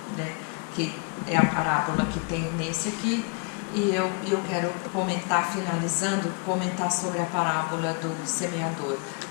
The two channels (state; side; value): quieter; right; 34.8 dB